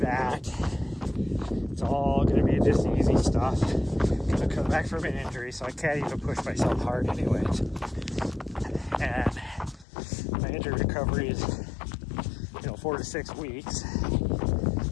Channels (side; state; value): right; drops out; at 9.9 s